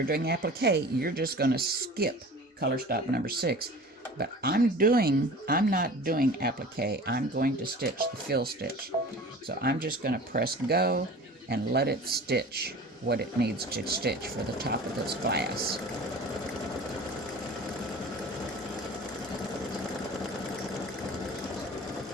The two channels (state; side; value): normal; both; correlation 0.40